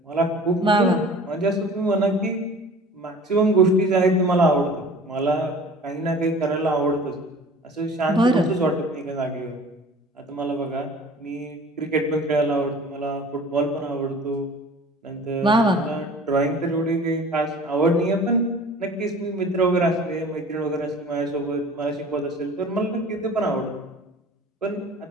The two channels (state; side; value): normal; both; correlation 0.45